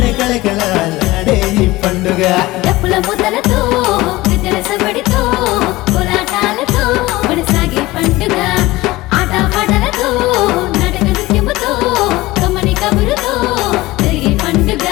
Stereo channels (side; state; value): right; quieter; 19.2 dB